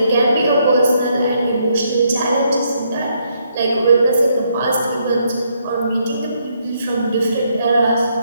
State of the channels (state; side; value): inverted; both; correlation -0.74